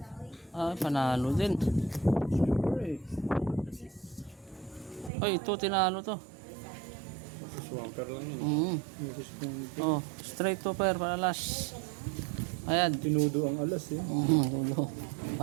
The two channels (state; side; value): drops out; left; at 5.1 s